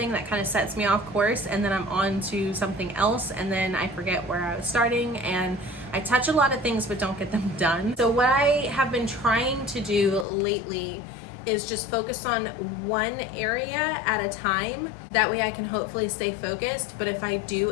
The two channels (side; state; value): right; drops out; at 10.2 s